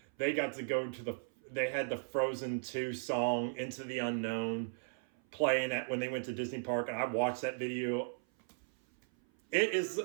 they got to go they had the Frozen 2 song, Into the Unknown, playing when they went to Disney Park, and I watched that video. It is,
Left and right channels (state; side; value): silent; left; 54 dB below the other